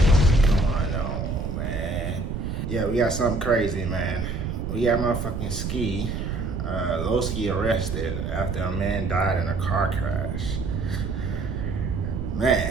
going on, man? Yeah, we got something crazy, man. We got motherfucking Ski, Loski arrested after a man died in a car crash.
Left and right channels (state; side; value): noise; right; rumble, 3 dB below the sound